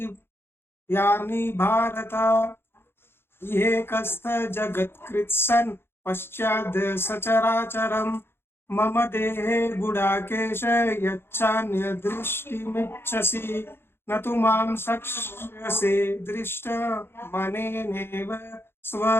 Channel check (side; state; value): right; late; 0.11 ms